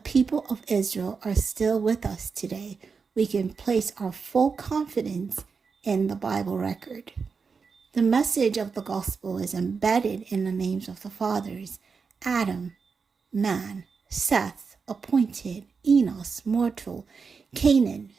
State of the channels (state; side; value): quieter; left; 5.2 dB